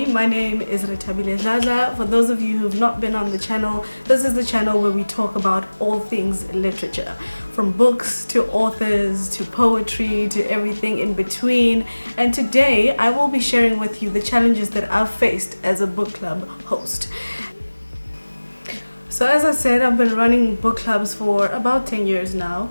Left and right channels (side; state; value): both; inverted; correlation -1.00